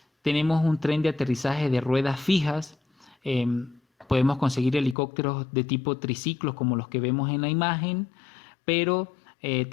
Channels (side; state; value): right; drops out; at 5.0 s